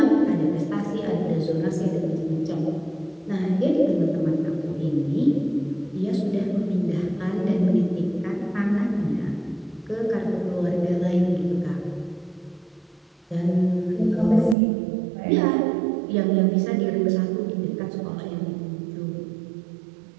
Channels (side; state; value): left; drops out; at 14.6 s